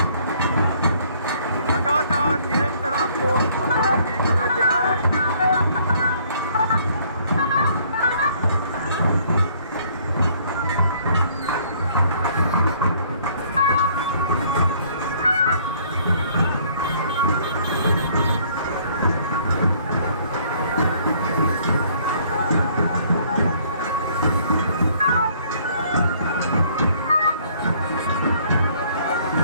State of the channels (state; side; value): inverted; both; correlation -0.61